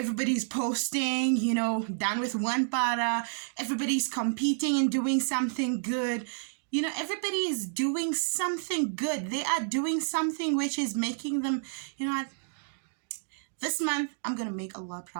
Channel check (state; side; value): silent; left; digital silence